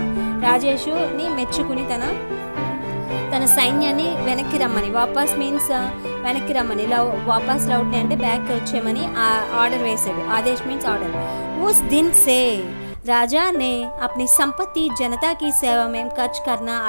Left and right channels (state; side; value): inverted; both; correlation -1.00